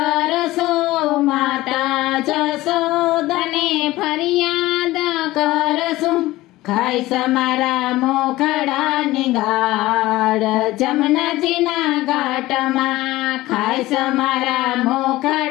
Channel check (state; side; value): quieter; right; 17.7 dB